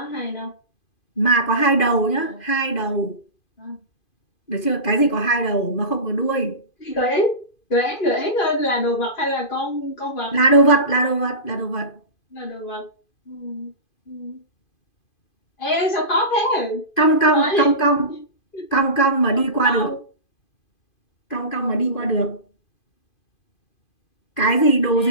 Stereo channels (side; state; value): right; late; 2.5 ms